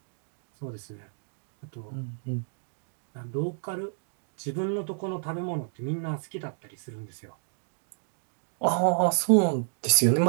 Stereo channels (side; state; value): left; silent; digital silence